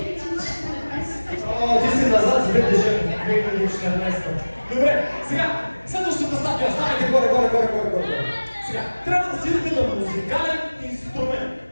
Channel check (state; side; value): inverted; both; correlation -1.00